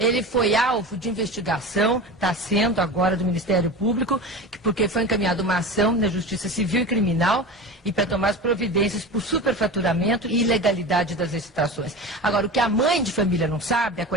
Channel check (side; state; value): both; normal; correlation 0.30